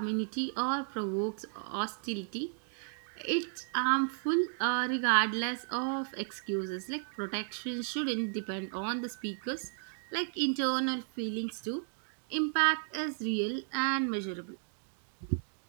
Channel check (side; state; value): left; silent; digital silence